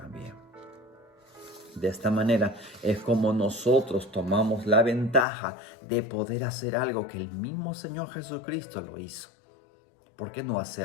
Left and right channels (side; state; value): right; drops out; at 5.2 s